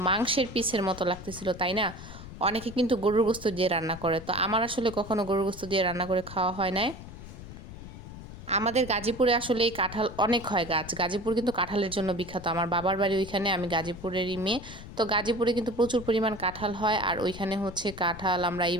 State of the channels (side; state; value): left; noise; rumble, 13 dB below the sound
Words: মাংসের পিসের মতো লাগতেছিল, তাই না? অনেকে কিন্তু গরুর গোস্ত দিয়ে রান্না করে, তো আমার আসলে কখনো গরুর গোস্ত দিয়ে রান্না করে খাওয়া হয় নাই। আমাদের গাজীপুরে আসলে এই কাঁঠাল অনেক হয় গাছ। গাজীপুর কিন্তু কাঁঠালের জন্য বিখ্যাত। আমার বাবার বাড়ি ওইখানে, আমি গাজীপুরেরই মেয়ে। তো গাজীপুরে কিন্তু প্রচুর পরিমাণ কাঁঠাল হয়। আর ওইখানে কাঁঠাল আমরা